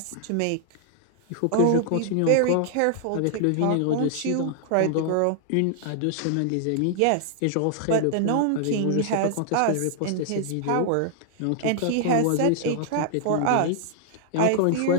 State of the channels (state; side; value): different; both; correlation -0.01